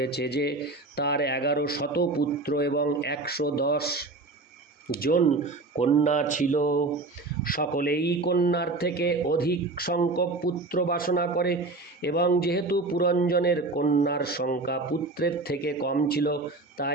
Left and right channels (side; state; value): left; quieter; 3.3 dB